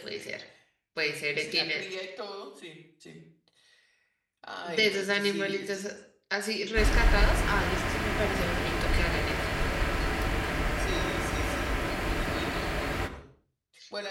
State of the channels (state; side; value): identical; both; correlation 1.00